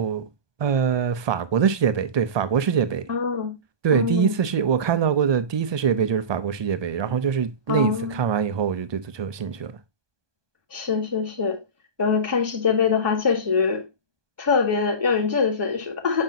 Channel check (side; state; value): left; late; 1.2 ms